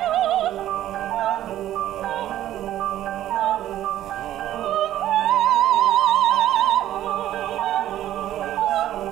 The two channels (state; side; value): quieter; left; 12.7 dB